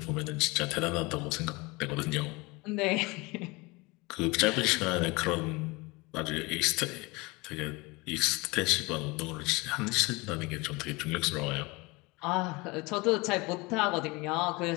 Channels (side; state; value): right; quieter; 24.7 dB